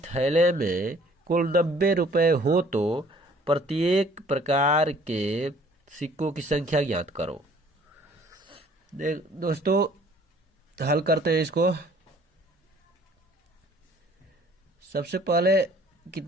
थैले में कुल 90 रुपए हो तो प्रत्येक प्रकार के सिक्कों की संख्या ज्ञात करो। दोस्तों हल करते हैं इसको। सबसे पहले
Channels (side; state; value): both; normal; correlation 0.56